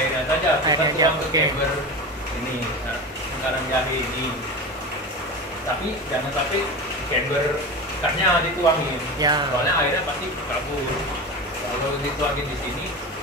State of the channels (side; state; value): both; normal; correlation 0.27